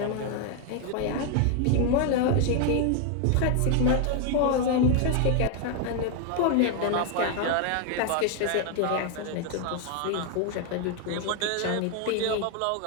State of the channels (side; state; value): both; different; correlation 0.01